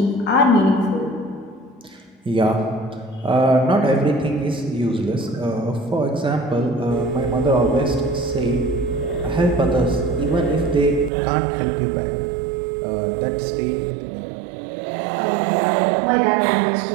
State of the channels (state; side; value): drops out; left; at 11.1 s